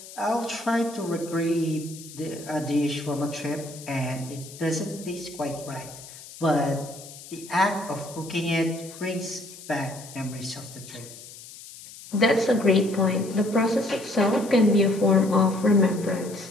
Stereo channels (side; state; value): left; noise; hiss, 16 dB below the sound